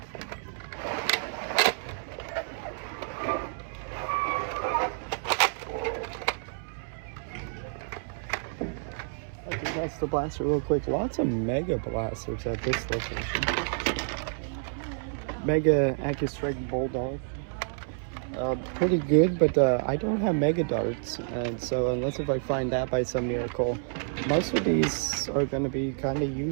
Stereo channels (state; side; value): silent; left; 58 dB below the other